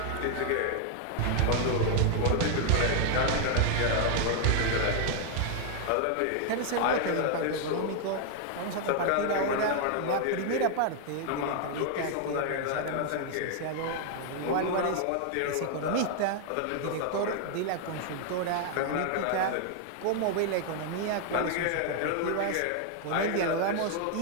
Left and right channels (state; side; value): different; both; correlation 0.00